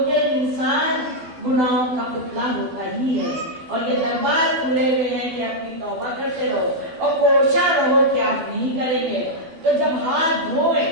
انسان گناہوں کا پتلا ہوتا ہی ہے۔ اور یہ دربار کھلے ہوئے ہیں کہ اپنی توبہ کرتے رہو اور کوشاں رہو کہ آپ نہیں کریں گے۔ تو جب ہاتھ دھوئے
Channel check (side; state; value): left; late; 12 ms